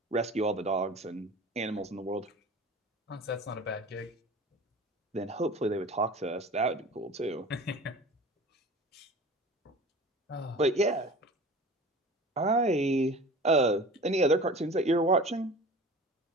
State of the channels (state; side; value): normal; both; correlation 0.39